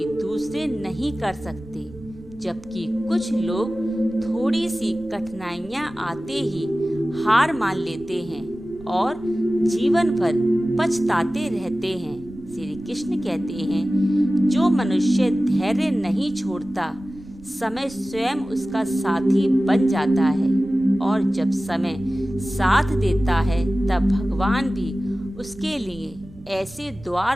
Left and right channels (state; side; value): noise; right; rumble, 21 dB below the sound